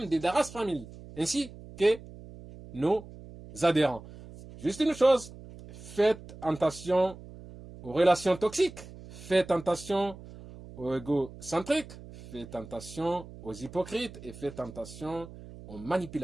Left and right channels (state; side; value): noise; right; hum, 16 dB below the sound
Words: d'Idaras Family ainsi que nos adhérents. Juste une chose, faites attention aux relations toxiques, faites attention aux égocentriques, faites attention aux hypocrites et faites attention aux